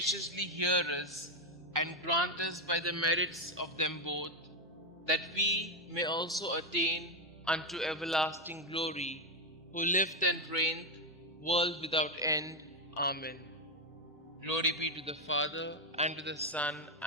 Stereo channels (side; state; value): both; normal; correlation 0.06